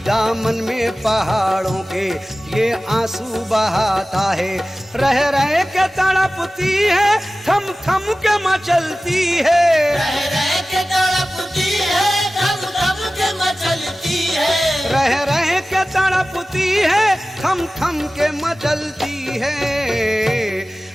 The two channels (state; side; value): normal; both; correlation 0.96